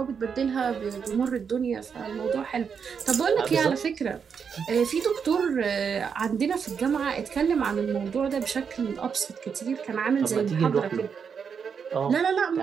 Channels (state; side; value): quieter; left; 6.5 dB